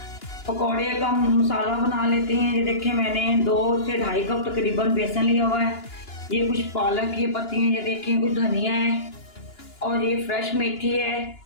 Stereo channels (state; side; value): late; right; 2.9 ms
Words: पकौड़े का मसाला बना लेते हैं। ये देखिए मैंने 2 से 2.5 कप तकरीबन बेसन लिया हुआ है। ये कुछ पालक की पत्ती हैं, ये देखिए कुछ धनिया है, और ये फ्रेश मेथी है।